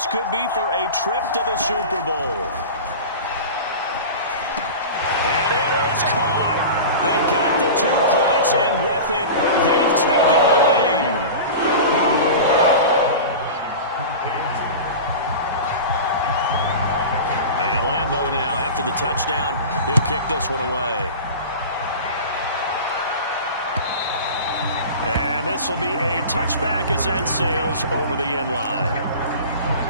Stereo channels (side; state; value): both; inverted; correlation -0.32